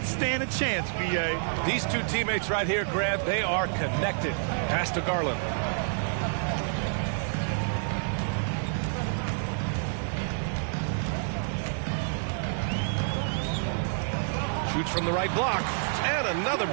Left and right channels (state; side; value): silent; left; 59 dB below the other